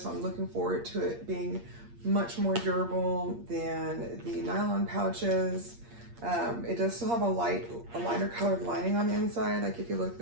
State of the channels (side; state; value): left; late; 8.6 ms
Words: so I'm looking forward to it being much more durable than the nylon pouches. It does still have a lighter colored lining on the inside, like if you look